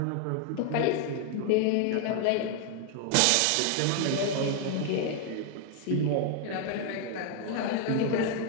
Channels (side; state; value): both; different; correlation 0.00